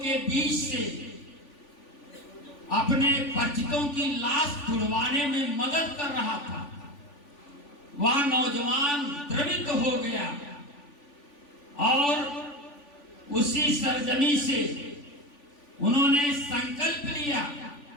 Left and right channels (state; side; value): late; right; 3.5 ms